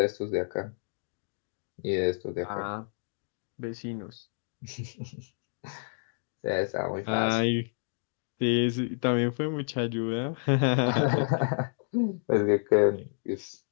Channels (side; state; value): right; silent; digital silence